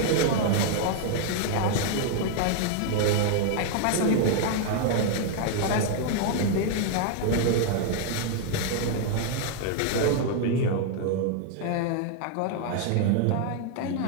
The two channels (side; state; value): both; different; correlation 0.00